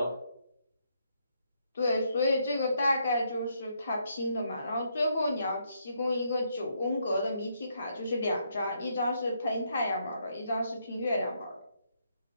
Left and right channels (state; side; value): inverted; both; correlation -0.75